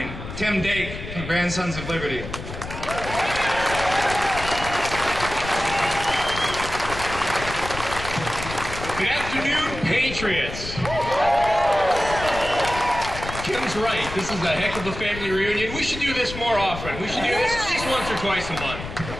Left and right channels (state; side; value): noise; left; rumble, 9 dB below the sound